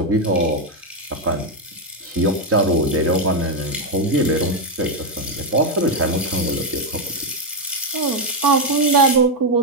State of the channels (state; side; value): normal; both; correlation 0.03